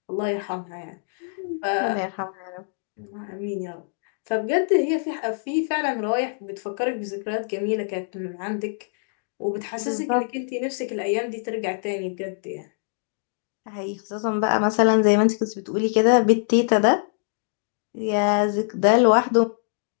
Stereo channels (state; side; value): silent; right; digital silence